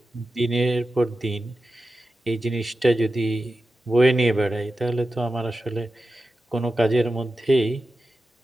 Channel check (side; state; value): both; normal; correlation 0.93